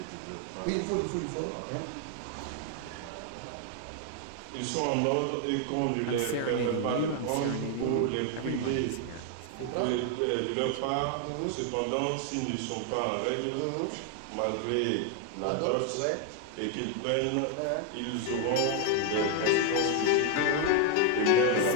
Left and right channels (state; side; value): different; both; correlation 0.01